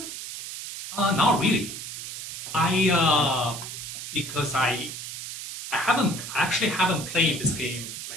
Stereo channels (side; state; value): right; noise; hiss, 8 dB below the sound